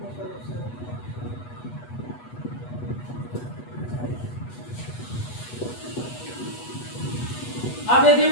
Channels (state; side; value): late; right; 8.2 ms